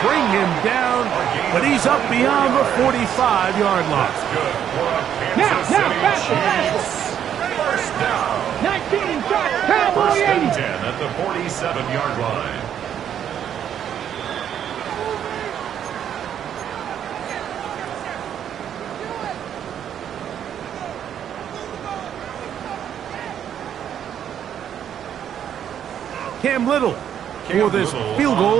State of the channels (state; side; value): quieter; left; 9.5 dB